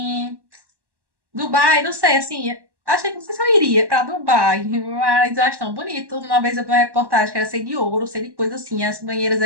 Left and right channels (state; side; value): late; left; 1.1 ms